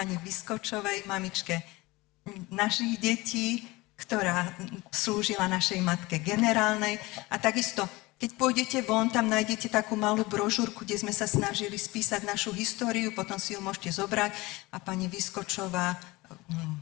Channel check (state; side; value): quieter; right; 21.9 dB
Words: Vyskočovej, mamičke našich detí, ktorá slúžila našej matke generálnej. A takisto, keď pôjdete von, tam nájdete takú malú brožúrku, kde sme sa snažili spísať našu históriu, potom si ju môžete zobrať, a pani Vyskočová